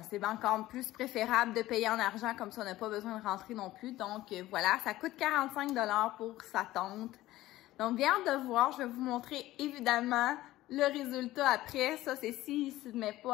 c'est encore plus préférable de payer en argent, comme ça on n'a pas besoin de rentrer non plus. Donc, voilà, ça coûte 45 $ pour sa tente. Donc, bien hâte de voir. Je vais vous montrer évidemment le résultat après. Ça, c'est s'il ne se met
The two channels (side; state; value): right; quieter; 16.1 dB